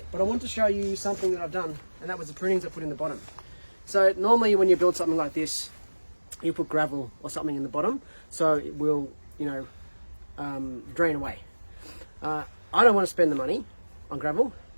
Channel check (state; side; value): inverted; both; correlation -1.00